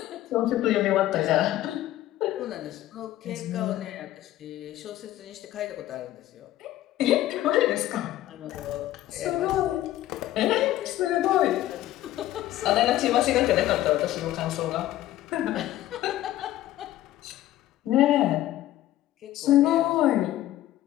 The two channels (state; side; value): quieter; right; 14.3 dB